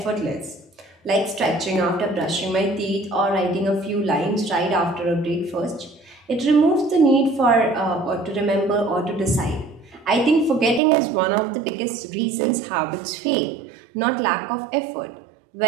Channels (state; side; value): drops out; left; at 10.8 s